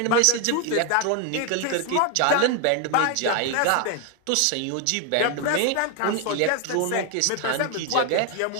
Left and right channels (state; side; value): different; both; correlation 0.01